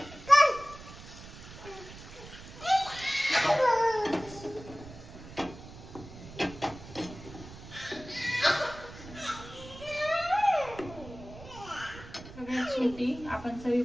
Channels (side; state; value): right; noise; rumble, 15 dB below the sound